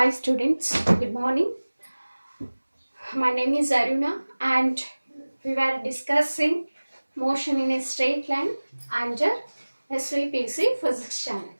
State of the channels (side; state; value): both; inverted; correlation -1.00